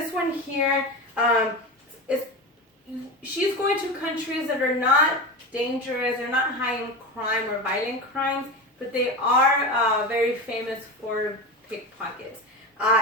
one here, she's going to countries that are not dangerous, they're not high in crime or violent crimes, but they are very famous for pickpockets.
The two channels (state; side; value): normal; both; correlation 0.24